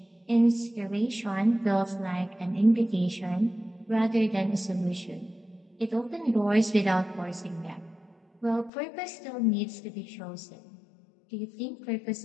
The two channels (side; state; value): right; drops out; at 8.7 s